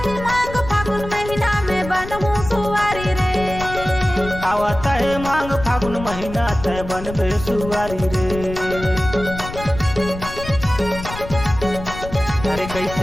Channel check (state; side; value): noise; left; rumble, 10 dB below the sound